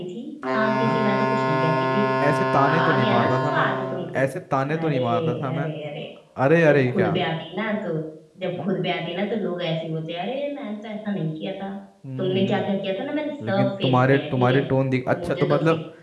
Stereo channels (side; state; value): both; identical; correlation 1.00